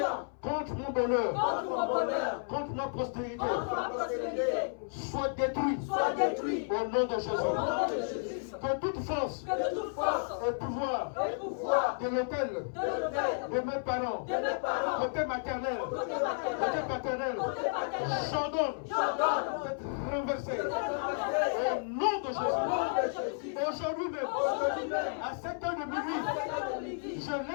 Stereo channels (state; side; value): silent; right; 56 dB below the other